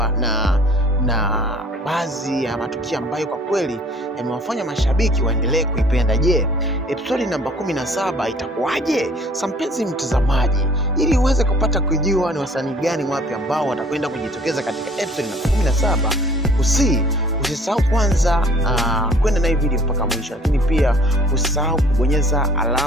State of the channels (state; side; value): normal; both; correlation 0.54